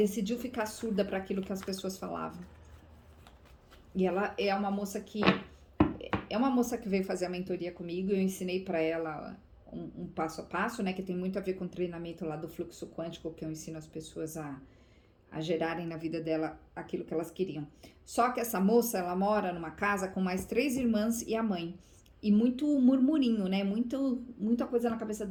ficar surda para aquilo que as pessoas falavam. E ela é uma moça que veio fazer a mentoria comigo. Eu ensinei para ela um passo a passo, né, que tem muito a ver com o treinamento lá do fluxo quântico, que eu ensino as pessoas a gerarem na vida dela aquilo que elas queriam. Só que essa moça, ela mora numa casa com mais 3 irmãs e a mãe. E muito murmurinho, né, muita coisa na cabeça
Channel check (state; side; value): identical; both; correlation 1.00